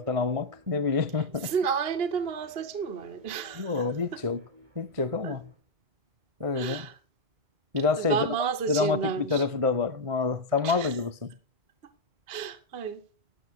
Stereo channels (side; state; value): left; late; 2.8 ms